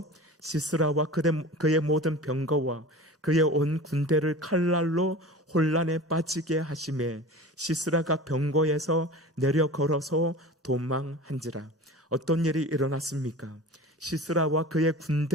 시스라와 그의 모든 병거와 그의 온 군대를 칼날로 혼란에 빠지게 하심에 시스라가 병거에서 내려 걸어서 도망한지라. 어떤 일이 일어났습니까? 시스라와 그의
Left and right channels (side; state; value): both; normal; correlation 0.36